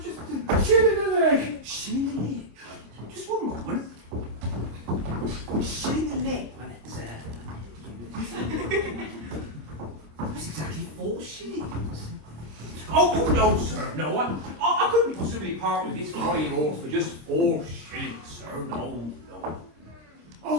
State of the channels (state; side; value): late; left; 26 ms